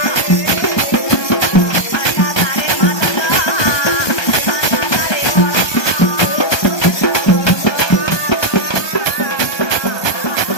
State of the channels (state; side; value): late; right; 1.3 ms